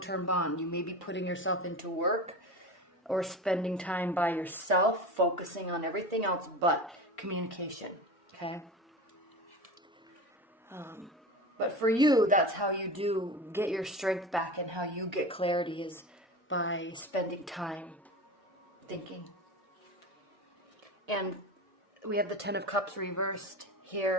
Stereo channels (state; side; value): normal; both; correlation 0.29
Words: bond, you may be putting yourself into work or spending time by yourself, focusing on everything else but communication, okay? But for you, that's how you do get your strength back, and how you get clarity is by spending time thinking. And we have the Ten of Cups reversed